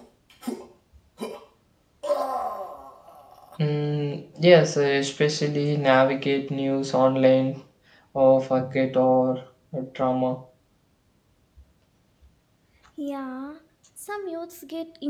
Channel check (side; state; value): both; identical; correlation 1.00